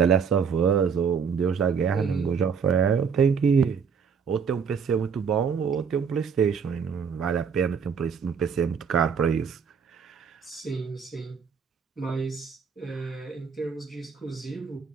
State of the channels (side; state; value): left; quieter; 6.4 dB